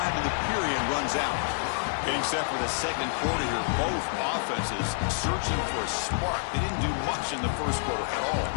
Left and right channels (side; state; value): right; silent; digital silence